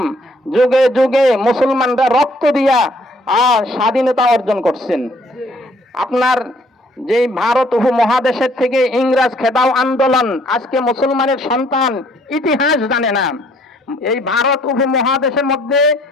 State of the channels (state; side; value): normal; both; correlation 0.63